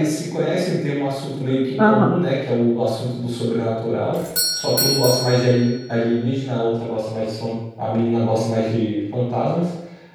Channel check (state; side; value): identical; both; correlation 1.00